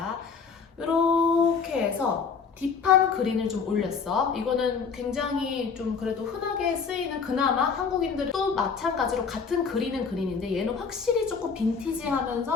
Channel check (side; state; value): right; quieter; 5.7 dB